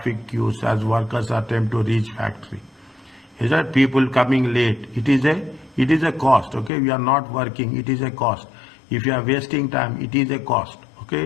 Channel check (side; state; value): right; drops out; at 6.7 s